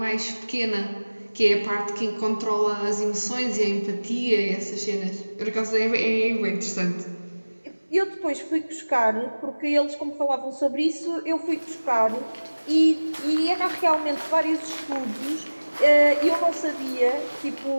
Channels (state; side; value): inverted; both; correlation -1.00